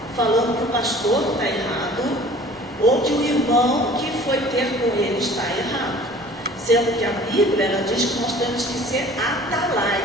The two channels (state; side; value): normal; both; correlation 0.48